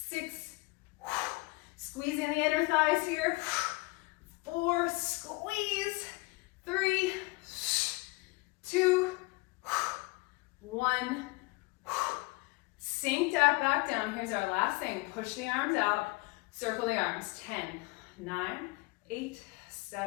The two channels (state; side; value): quieter; right; 24.8 dB